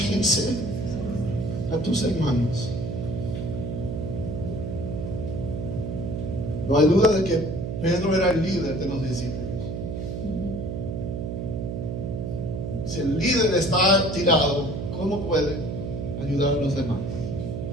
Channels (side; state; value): right; noise; hum, 4 dB below the sound